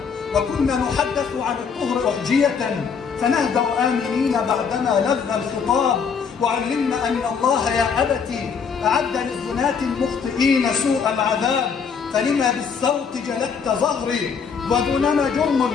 وكنا نحدث عن الطهر أحجية فنهدأ آمنين بعدما لذ الخطاب، وعلمنا أن الله يا أبت أعد للزناة المخطئين سوء العذاب، فلما بالصوت جلدت ظهري ودونما جرم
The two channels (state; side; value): quieter; right; 6.2 dB